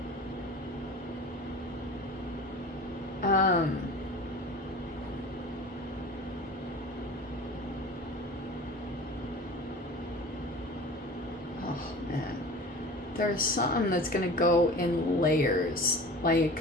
there's something that's gonna go in layers. Like,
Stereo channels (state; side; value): normal; both; correlation 0.38